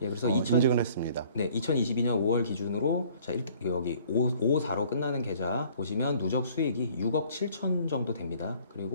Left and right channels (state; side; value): inverted; both; correlation -0.56